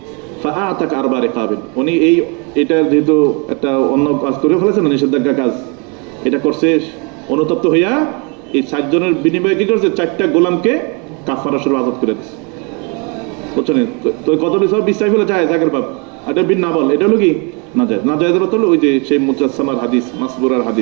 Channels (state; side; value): quieter; left; 33.1 dB